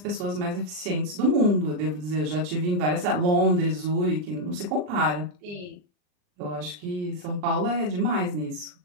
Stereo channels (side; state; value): left; late; 39 ms